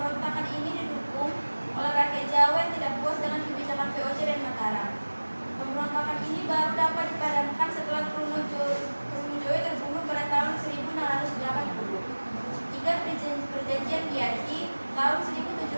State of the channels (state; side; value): inverted; both; correlation -1.00